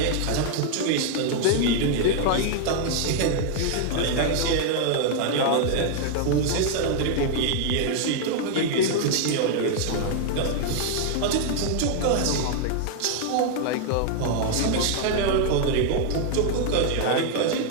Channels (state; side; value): different; both; correlation 0.00